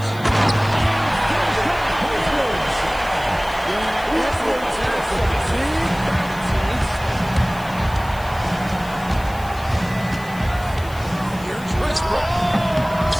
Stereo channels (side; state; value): left; noise; hiss, 20 dB below the sound